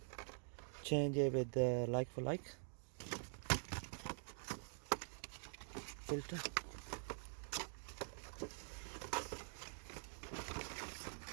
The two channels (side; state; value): left; silent; digital silence